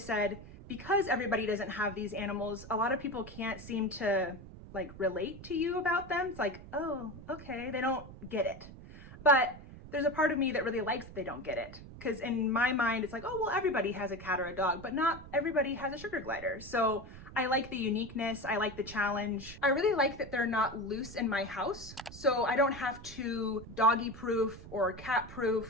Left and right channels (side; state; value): right; noise; rumble, 15 dB below the sound